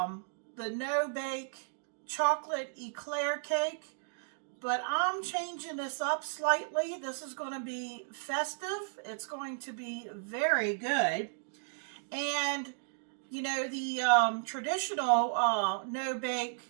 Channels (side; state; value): left; silent; digital silence